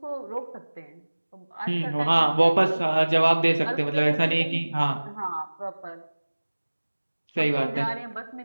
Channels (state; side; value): inverted; both; correlation -1.00